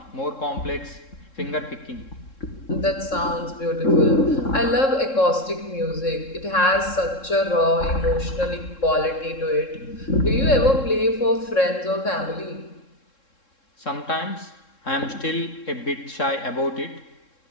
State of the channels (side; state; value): right; late; 3.7 ms